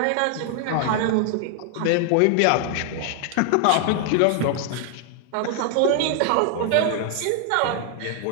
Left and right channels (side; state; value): both; different; correlation 0.00